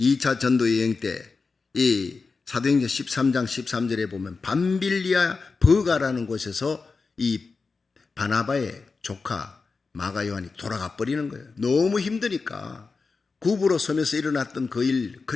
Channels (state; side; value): quieter; right; 4.4 dB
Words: 전도 여행 때 이 사도행전 13장 13절에 보면 밤빌리아 버가라는 곳에서 이 바나바의 조카 마가 요한이 돌아가 버리는 거예요. 너무 힘드니까 굽으로 서면서 일어났던 그 일,